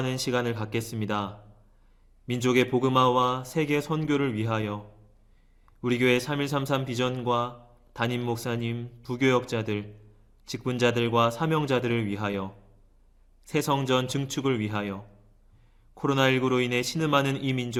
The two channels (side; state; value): both; identical; correlation 1.00